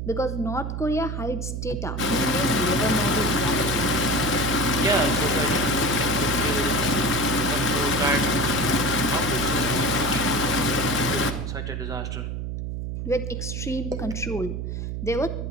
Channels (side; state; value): right; noise; hum, 4 dB below the sound